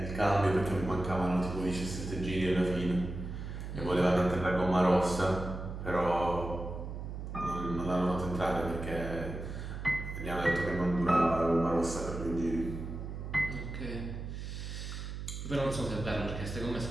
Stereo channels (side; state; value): right; noise; hum, 7 dB below the sound